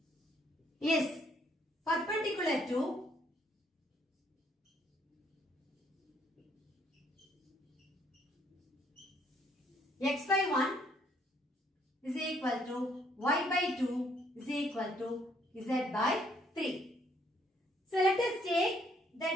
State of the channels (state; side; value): normal; both; correlation 0.67